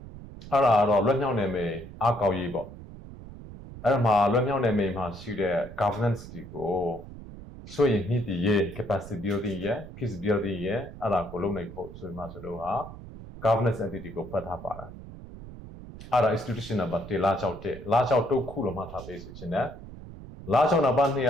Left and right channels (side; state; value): right; noise; rumble, 14 dB below the sound